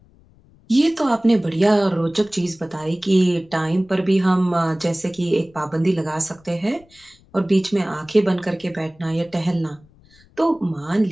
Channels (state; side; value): noise; left; rumble, 29 dB below the sound